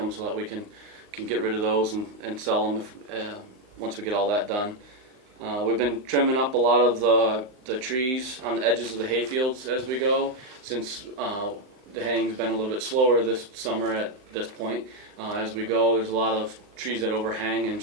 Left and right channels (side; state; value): left; late; 39 ms